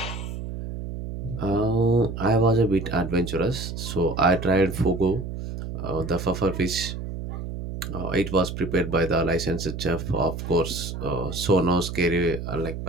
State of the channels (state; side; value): noise; right; hum, 7 dB below the sound